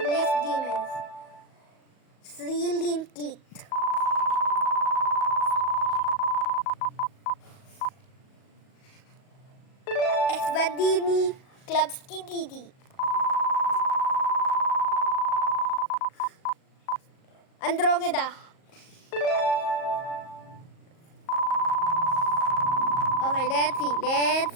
demons. 3 link clicked. Esvadini Klubski Didi. Andromeda. Okay,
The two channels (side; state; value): right; late; 38 ms